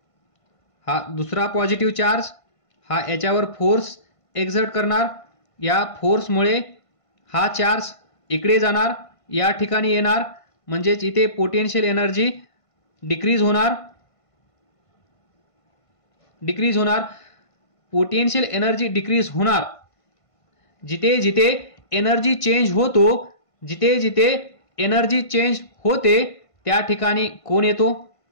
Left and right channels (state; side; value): late; right; 1.5 ms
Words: हा दुसरा पॉझिटिव्ह चार्ज, हा याच्यावर फोर्स एक्झर्ट करणार. या फोर्समुळे हा चार्ज इकडे जाणार, या ठिकाणी येणार, म्हणजेच इथे पोटेन्शियल एनर्जी डिक्रीज होणार. पोटेन्शियल एनर्जी डिक्रीज होणार. जिथे जिथे एनर्जी चेंज होतो, जिथे जिथे एनर्जी चेंज होते त्या ठिकाणी कोण येतो?